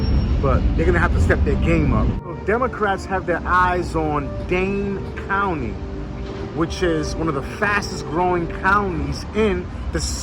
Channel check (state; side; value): identical; both; correlation 1.00